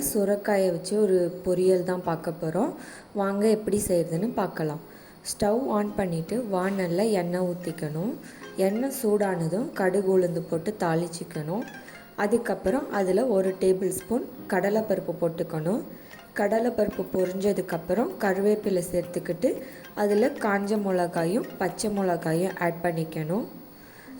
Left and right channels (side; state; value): both; identical; correlation 1.00